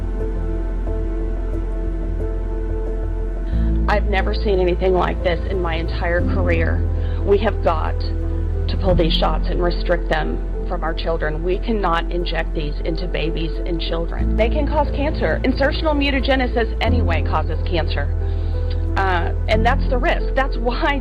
I've never seen anything like this in my entire career. We have got to pull these shots and restrict them from our children. We cannot inject these into babies and children. They can cause cancer. Insertional mutagenesis anyway causes cancer. And that's the risk. That's why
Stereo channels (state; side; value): identical; both; correlation 1.00